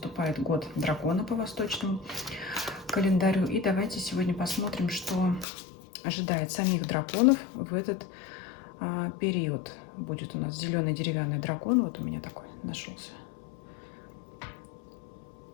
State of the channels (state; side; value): drops out; right; at 5.5 s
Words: год дракона по восточному календарю. И давайте сегодня посмотрим, что ожидает самих драконов в этот период. Будет у нас зеленый деревянный дракон. Вот у меня такой нашелся